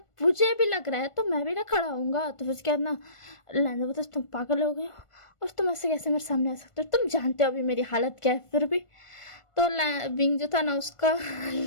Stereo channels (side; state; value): right; late; 1.5 ms